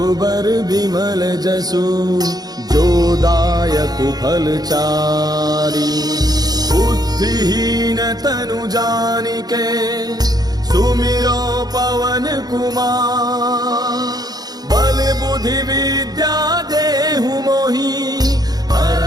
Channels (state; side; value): late; left; 0.19 ms